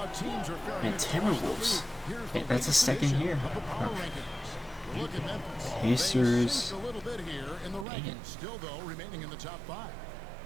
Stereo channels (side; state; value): left; drops out; at 7.9 s